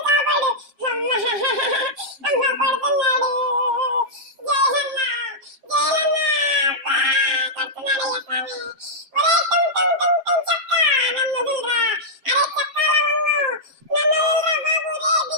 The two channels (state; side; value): late; left; 7.4 ms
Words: కాపాడు. అమ్మ కొడుతున్నాడు జోయల్ అన్న, జోయల్ అన్న అబ్బా కొడుతున్నాడయ్యా స్వామి. ఒరే టుంటుం టుంటుం చక్క నన్ను వదిలిరా. అరే చక్క లవంగు నన్ను వదిలిరా బాబు.